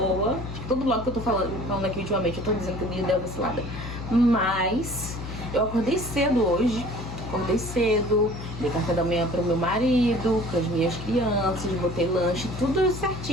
Todo vlog que eu tô falando aqui ultimamente, eu tô dizendo que eu dei uma vacilada. Mas eu acordei cedo hoje. Dei café da manhã pro meu marido, para as minhas crianças, botei lanche, tudo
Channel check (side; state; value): left; noise; hum, 9 dB below the sound